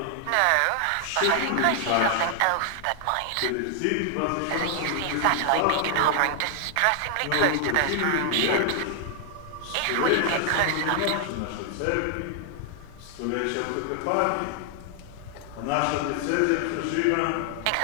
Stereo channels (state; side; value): different; both; correlation 0.00